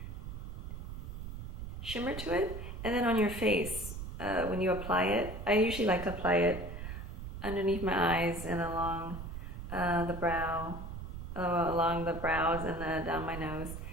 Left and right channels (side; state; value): right; noise; rumble, 8 dB below the sound